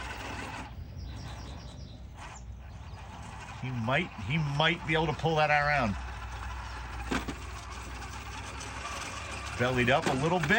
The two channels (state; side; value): identical; both; correlation 1.00